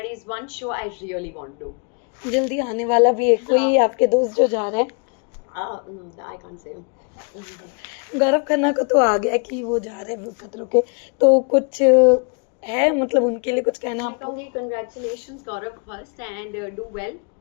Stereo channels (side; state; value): right; quieter; 39.4 dB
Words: is one show I really want to. जल्दी आने वाला भी है कोई आपके दोस्त जो जा रहे हैं? I can't say. Gaurav Khanna को तो आ गया कि वो जा रहे हैं खतरों के, तो कुछ है मतलब उनके लिए कुछ कहना मैं आपको? कहूँगी congratulations Gaurav first, and do well,